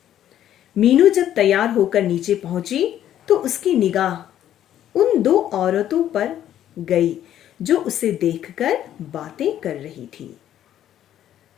मीनू जब तैयार होकर नीचे पहुंची तो उसकी निगाह उन 2 औरतों पर गई जो उसे देखकर बातें कर रही थी।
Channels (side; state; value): right; quieter; 11.3 dB